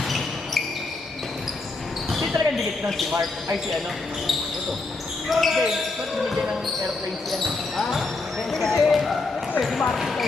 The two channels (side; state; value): right; quieter; 3.6 dB